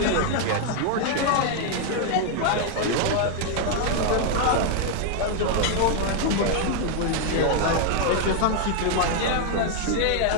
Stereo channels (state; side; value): different; both; correlation 0.00